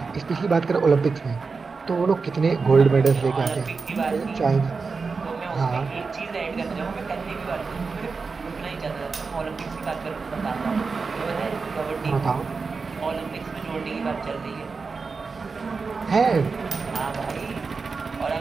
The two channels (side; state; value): left; quieter; 4.6 dB